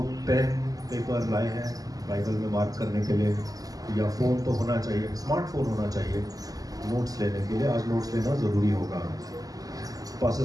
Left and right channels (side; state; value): left; late; 0.17 ms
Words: पेन पेपर लाए हैं बाइबल में मार्क करने के लिए, या फ़ोन तो होना चाहिए, स्मार्टफोन होना चाहिए नोट्स लेने के लिए। आज नोट्स लेना ज़रूरी होगा। पास्टर